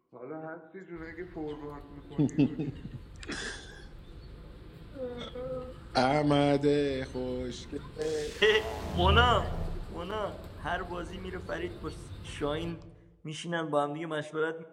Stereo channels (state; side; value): identical; both; correlation 1.00